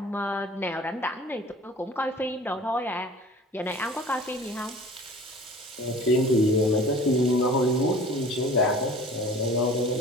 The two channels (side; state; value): both; normal; correlation 0.45